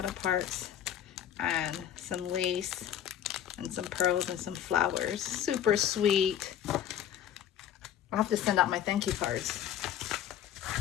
aparts, and some lace, and some pearls, and some flowers. Super sweet. I'll have to send out my thank you cards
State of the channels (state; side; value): quieter; right; 10.3 dB